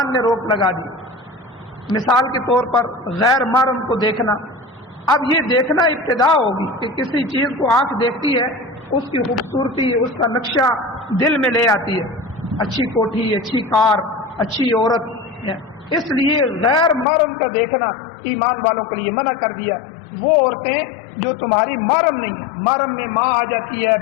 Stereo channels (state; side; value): drops out; right; at 17.1 s